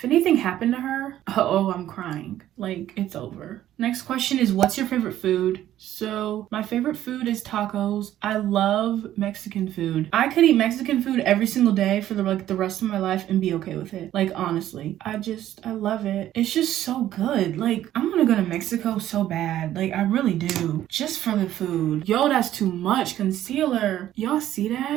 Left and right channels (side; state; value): left; quieter; 12.6 dB